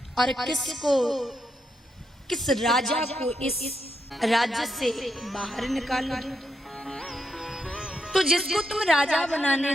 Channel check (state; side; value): normal; both; correlation 0.81